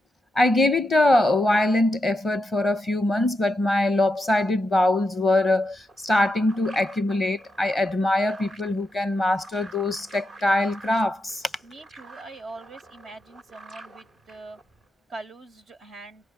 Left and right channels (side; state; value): both; normal; correlation 0.86